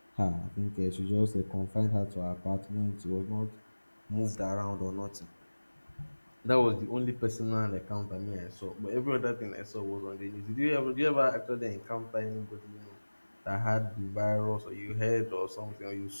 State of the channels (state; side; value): inverted; both; correlation -1.00